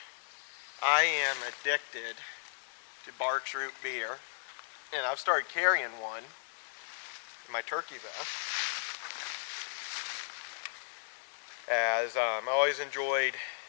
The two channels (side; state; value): right; silent; digital silence